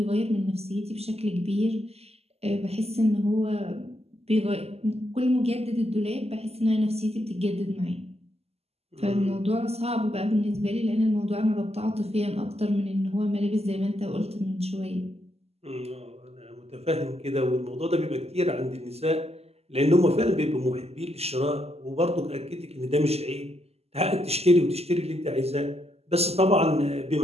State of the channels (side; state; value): left; late; 0.29 ms